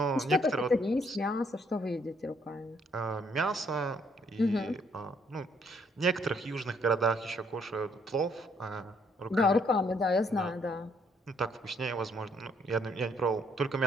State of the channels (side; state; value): both; normal; correlation 0.68